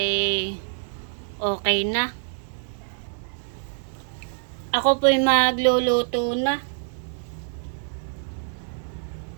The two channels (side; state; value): left; silent; 61 dB below the other